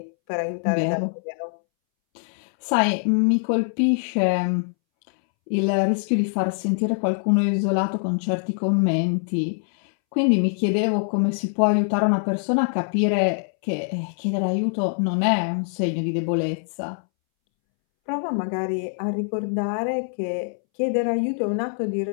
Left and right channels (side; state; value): right; silent; 63 dB below the other